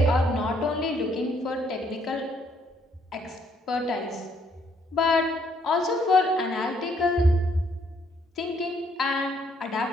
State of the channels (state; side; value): normal; both; correlation 0.68